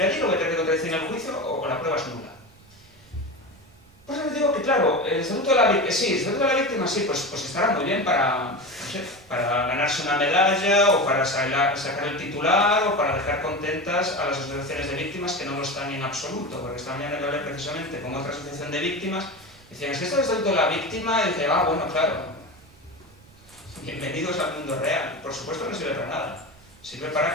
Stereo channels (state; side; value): noise; right; rumble, 26 dB below the sound